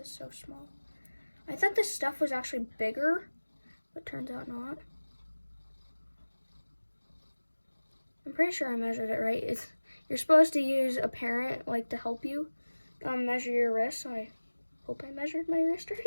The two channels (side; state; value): both; inverted; correlation -1.00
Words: so small. I thought this stuff was actually bigger, but turns out not. I'm pretty sure I measured it right. You're supposed to use a parent to help you measure your wrist, so I hope I measured my wrist